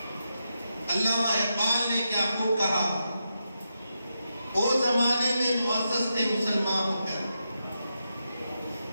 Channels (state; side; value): inverted; both; correlation -0.86